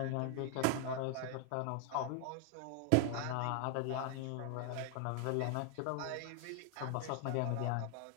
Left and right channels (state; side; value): different; both; correlation 0.00